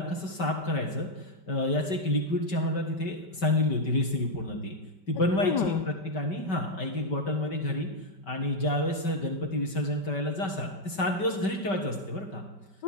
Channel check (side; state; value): right; late; 5.2 ms